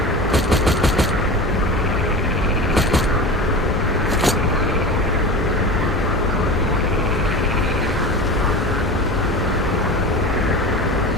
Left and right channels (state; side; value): normal; both; correlation 0.30